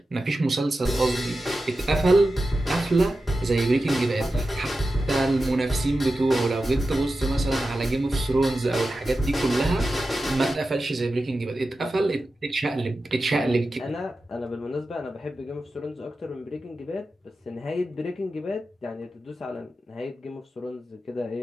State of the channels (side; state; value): both; normal; correlation 0.92